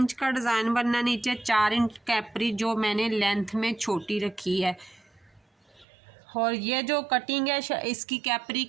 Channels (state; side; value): drops out; left; at 5.9 s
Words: का डिज़ाइन बनना, नीचे 4 इंच कैप्री जो मैंने लेंथ में छोटी रखी है। और ये जो कटिंग है इसकी कैप्री